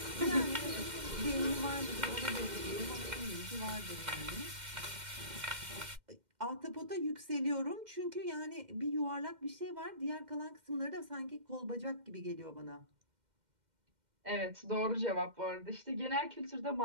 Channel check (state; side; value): late; left; 2.1 ms